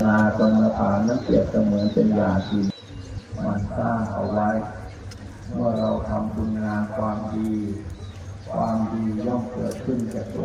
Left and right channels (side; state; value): both; identical; correlation 1.00